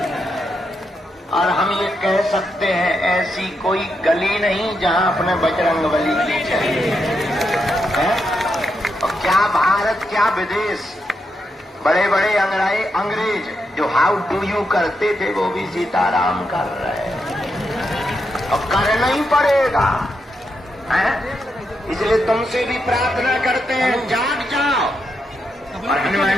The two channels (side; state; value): both; normal; correlation 0.83